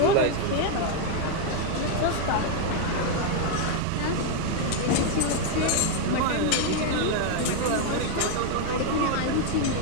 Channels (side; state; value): both; different; correlation 0.00